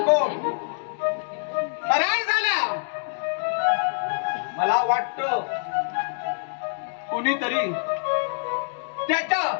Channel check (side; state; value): right; silent; digital silence